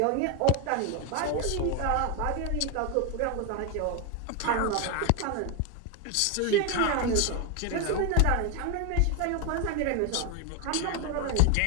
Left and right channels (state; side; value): different; both; correlation 0.01